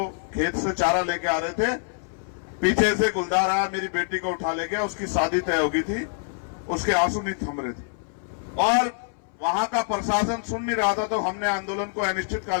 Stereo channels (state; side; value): silent; right; 61 dB below the other